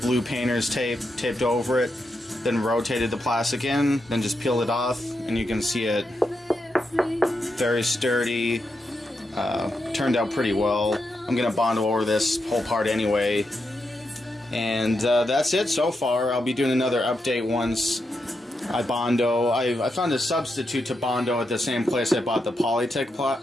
blue painter's tape, taped over it, then rotated the plastic in, then just peeled it off, and you can see it very sturdy. Turned out pretty well. I'm going to Bondo over this whole part anyway. And that's it so far. I'll be doing another update once I Bondo. I found a substitute to Bondo at the same place I bought the Polytech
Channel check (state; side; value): normal; both; correlation 0.85